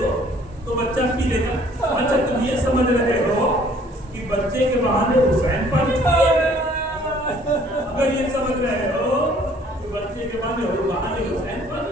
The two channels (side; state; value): both; normal; correlation 0.58